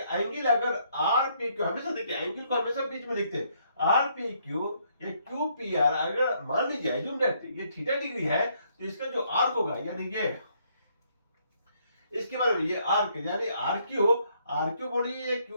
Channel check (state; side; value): inverted; both; correlation -0.70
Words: अगर आर पी क्यू, हमेशा देखिए एंगल को हमेशा बीच में लिखते हैं, आर पी क्यू या क्यू पी आर। अगर मान लीजिए एज्यूम दैट ये थीटा डिग्री है, तो इसका जो आर्क होगा, यानी ये इसके बारे में, ये आर्क यानी आर क्यू बोलिए या